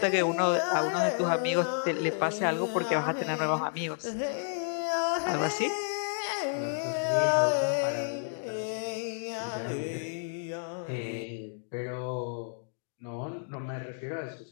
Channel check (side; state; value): right; silent; digital silence